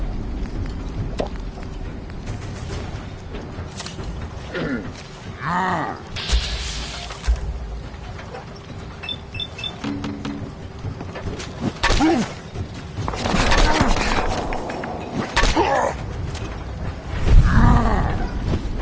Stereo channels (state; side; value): identical; both; correlation 1.00